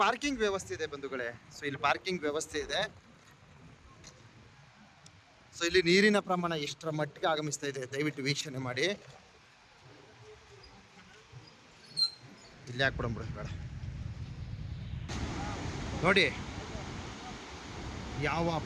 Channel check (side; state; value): both; identical; correlation 1.00